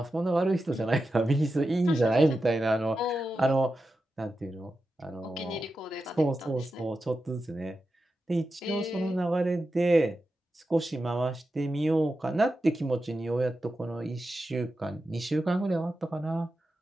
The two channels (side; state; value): both; normal; correlation 0.90